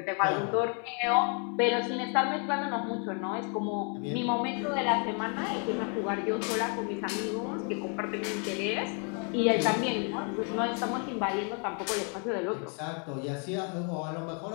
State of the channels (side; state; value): right; quieter; 39.1 dB